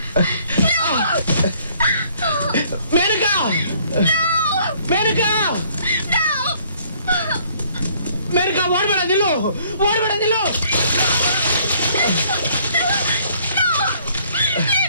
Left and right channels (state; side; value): inverted; both; correlation -0.62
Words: Menaka, Menaka, Menaka, ಓಡ್ಬೇಡ, ನಿಲ್ಲು, ಓಡ್ಬೇಡ, ನಿಲ್ಲು.